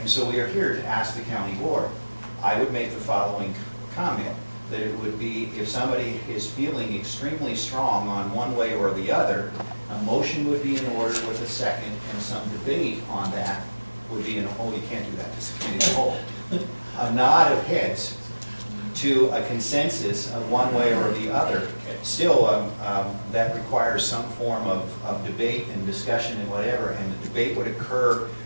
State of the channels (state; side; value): inverted; both; correlation -1.00